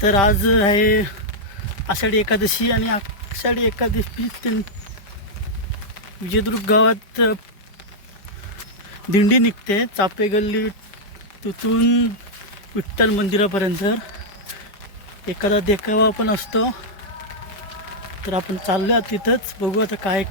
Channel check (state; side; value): late; right; 5.1 ms